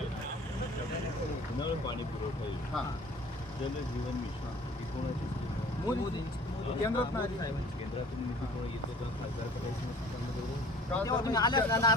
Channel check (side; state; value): both; normal; correlation 0.48